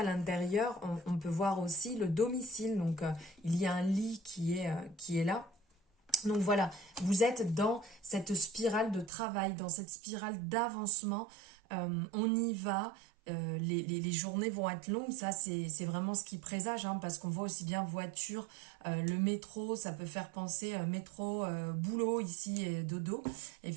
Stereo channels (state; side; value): drops out; left; at 9.1 s